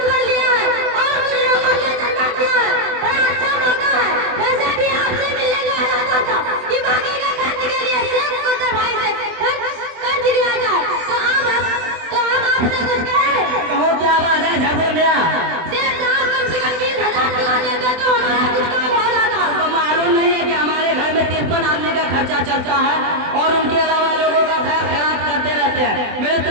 कर लिया है, और कुछ लोगों ने चंदा किया है। बड़ा अच्छा मौका है, वैसे भी आपसे मिलने गया था कि बाकी के खर्च के लिए शेख मुकद्दर भाई से कर्ज लिया जाए, तो हम आपसे कुछ कहें। कहो, क्या बात है झब्बू मियाँ? शेख साहब, कम से कम 20,000 दिला देते तो हमारा कुछ काम हो जाता। आपको मालूम नहीं है कि हमारे घर में 53 आदमी का खर्चा चलता है, और उनके अलावा लोगों का खैर खैरात करते रहते हैं। मेरी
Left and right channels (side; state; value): left; late; 24 ms